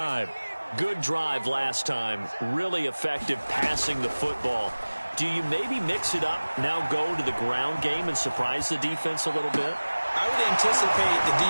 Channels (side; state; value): both; inverted; correlation -1.00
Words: Good drive last time. Really effective passing the football. Do you maybe mix it up, now go to the ground game and surprise the defense a little bit? I would anticipate the